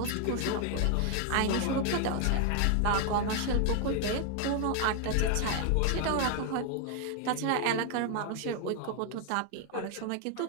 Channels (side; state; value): both; different; correlation 0.00